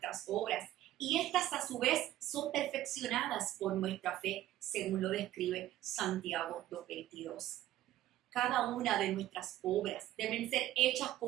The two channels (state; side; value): quieter; left; 14.1 dB